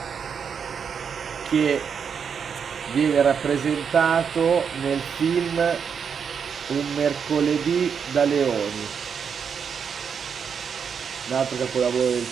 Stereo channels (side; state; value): left; quieter; 6.8 dB